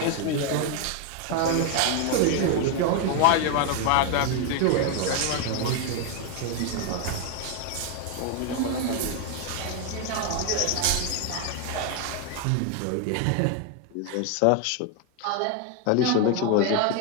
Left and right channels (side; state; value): both; different; correlation 0.01